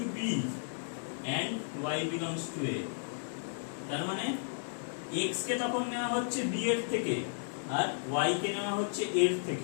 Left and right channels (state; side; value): silent; right; digital silence